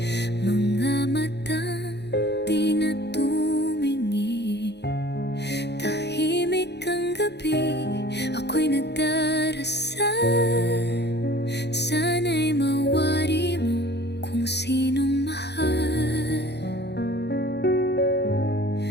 mga matang di na tumingin. Tahimik ang gabi, ako'y nagdarasal. Sana'y mawari mo kung sinong mahal.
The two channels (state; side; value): late; right; 0.49 ms